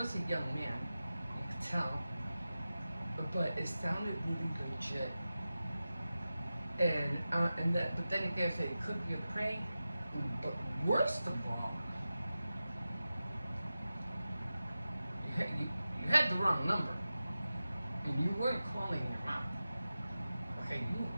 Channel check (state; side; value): inverted; both; correlation -0.94